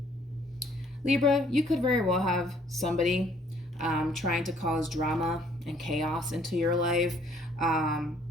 Libra, you could very well have somebody trying to cause drama and chaos into your life.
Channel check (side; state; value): both; normal; correlation 0.62